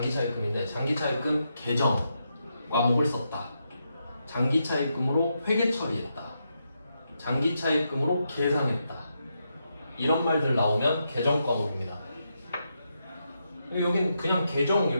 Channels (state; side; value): inverted; both; correlation -0.83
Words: 차입금인데 장기 차입금 계정 과목을 썼다. 장기 차입금으로 회계 처리했다. 장기 차입금으로 계상했다. 이런 말들 나오면 계정 과목입니다. 여긴 그냥 계정